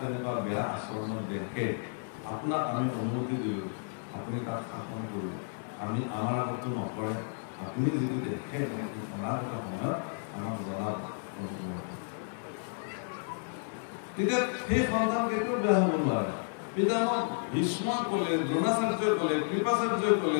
বেয়া আচৰণত দেখে, আপোনাক আমি অনুমতি দিলোঁ, আপুনি তাত শাসন কৰিব, আমি আমাৰ আগতো নকৰে, আপুনি যদি দেখে অনাগত সময়ত আমাক জনাব। তেতিয়া সেই সন্তান কেতিয়াও বেয়া হ'ব নোৱাৰে। পিতামহ ভীষ্মই ক'লে, দ্ৰোণাচাৰ্যই ক'লে, কৃপাচাৰ্যই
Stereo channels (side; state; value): right; silent; digital silence